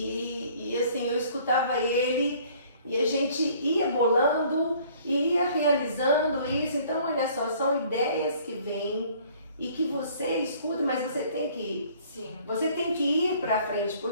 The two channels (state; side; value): inverted; both; correlation -0.55